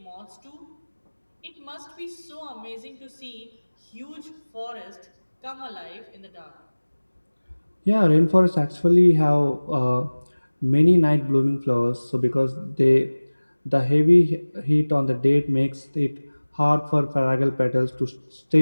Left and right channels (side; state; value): both; inverted; correlation -1.00